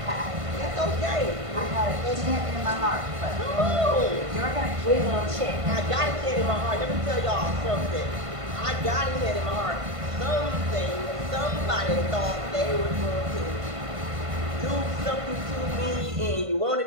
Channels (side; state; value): left; late; 1.5 ms